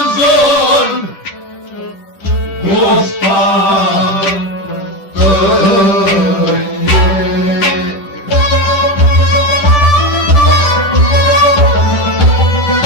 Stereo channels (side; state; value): right; late; 10 ms